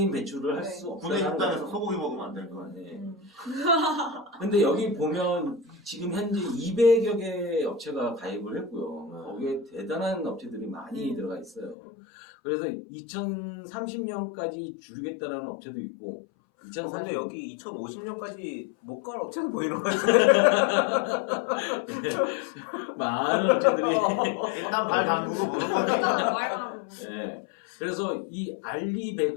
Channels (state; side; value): drops out; right; at 11.8 s